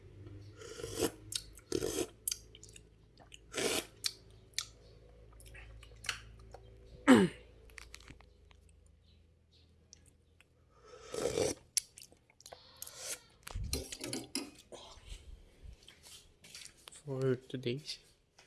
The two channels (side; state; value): both; identical; correlation 1.00